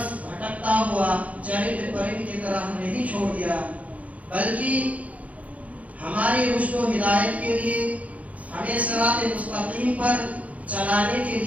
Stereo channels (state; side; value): late; left; 0.068 ms